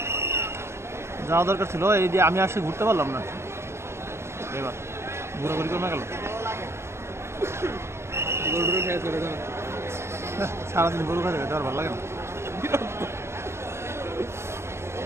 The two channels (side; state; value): left; late; 0.13 ms